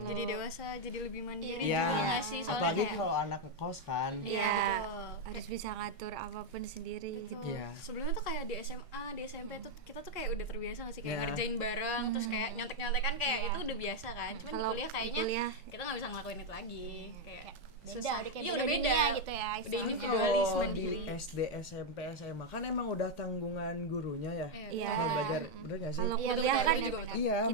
jadi dewasa, jadi lebih mandiri Iya. juga nggak sih? Soalnya Apalagi kayak kalau anak ngekos kan. Iya, betul. harus bisa ngatur apapun sendiri gitu. Iya. Sebelumnya tuh kayak di SMA, di SMP tuh kita tuh kayak udah terbiasa nggak sih kayak Iya. ngerjain bareng, terus kayak nyontek-nyontekan kayak itu udah biasa kan. Cuman Kalau kuliah kayaknya kuliah, kita nggak bisa ngelakuin itu lagi. Kayak beda susah. udah kayak Iya, beda udah beda dunia gitu ya Udah istilahnya. individualis Kalau mandiri. di SD, SMP, SMA kan emang udah tanggungan gurunya ya. Iya. Kalau belajar, bener gak sih? kalau Iya, kuliah betul, kan betul, betul. Iya, kita-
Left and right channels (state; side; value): normal; both; correlation 0.02